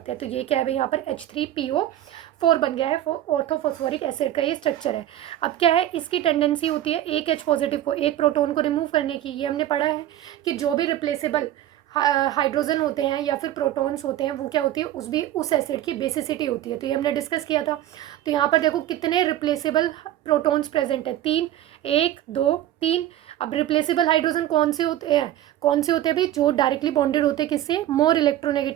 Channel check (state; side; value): quieter; left; 12.9 dB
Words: हैं। तो ये क्या है भाई, यहाँ पर H3PO4 बन गया है। ऑर्थोफॉस्फोरिक एसिड का ये स्ट्रक्चर है। अब क्या है, इसकी टेंडेंसी होती है एक H पॉजिटिव को, एक प्रोटॉन को रिमूव करने की। ये हमने पढ़ा है कि जो भी रिप्लेसेबल हाइड्रोजन होते हैं या फिर प्रोटॉन्स होते हैं वो क्या होती है, उस एसिड की बेसिसिटी होती है। तो ये हमने डिस्कस किया था। तो यहाँ पर देखो कितने रिप्लेसेबल प्रोटॉन्स प्रेजेंट है, 3, 1, 2, 3। अब रिप्लेसेबल हाइड्रोजन कौन से होते हैं भाई, जो डायरेक्टली बॉन्डेड होते हैं किससे, मोर